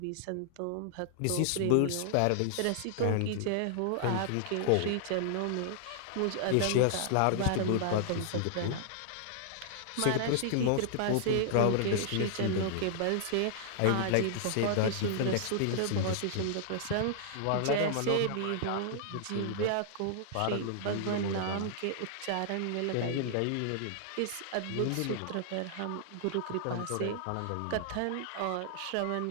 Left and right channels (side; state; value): both; different; correlation -0.01